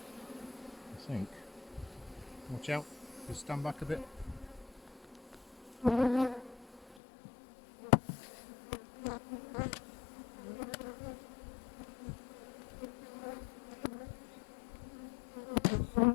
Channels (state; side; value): drops out; right; at 7.0 s